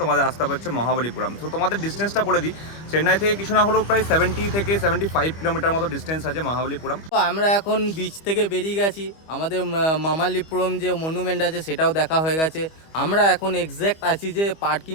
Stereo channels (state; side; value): late; right; 25 ms